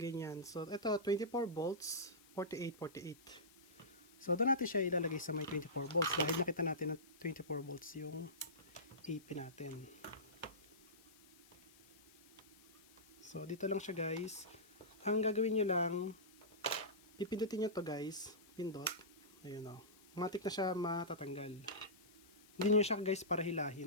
So, ito, 24 volts, 48, 48. So, doon natin siya ilalagay sa may 24 volts dahil nakita natin na 24 volts yung AP natin. So, dito lang siya, guys. Ang gagawin nyo lang, pipindutin nyo to, guys. Pindot. Ayun, o. Matik na siya matatanggal. Hindi nyo siya, guys, para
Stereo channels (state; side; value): noise; left; hiss, 25 dB below the sound